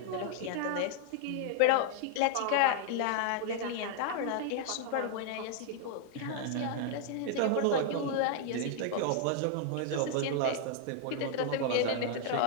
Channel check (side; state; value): both; different; correlation 0.00